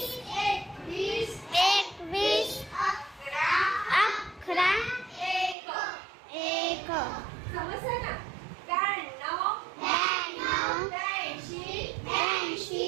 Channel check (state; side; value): drops out; left; at 5.6 s